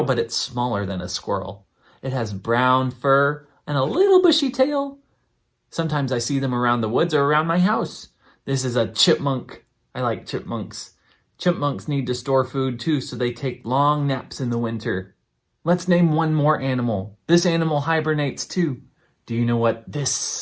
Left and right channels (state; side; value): identical; both; correlation 1.00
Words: but it's smaller than a squirrel. It has brown fur and a little bushy tail. Sometimes I see them around the woods or around my house. This is a chipmunk. I like chipmunks. Chipmunks need to store food too, so they take long naps in the winter. Let's name one more animal. This animal hibernates too. Do you know what